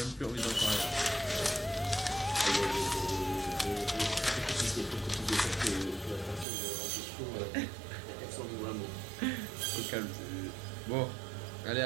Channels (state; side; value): drops out; left; at 6.5 s